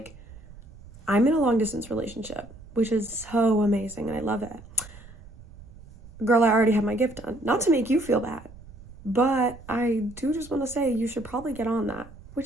I'm in a long distance relationship, which is so amazing and I love it. Girl, I already have my gift done. Not to make you feel bad, but I do just want to say you should probably get on that,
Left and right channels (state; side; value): noise; right; rumble, 19 dB below the sound